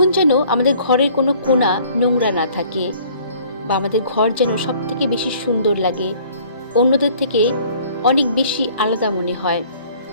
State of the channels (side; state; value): both; inverted; correlation -0.55